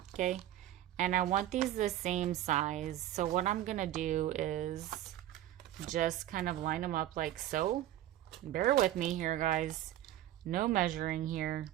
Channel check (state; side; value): quieter; left; 13.1 dB